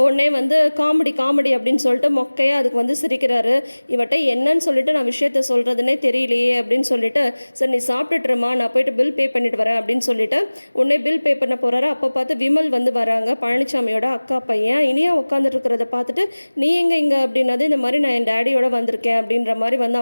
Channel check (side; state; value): both; inverted; correlation -1.00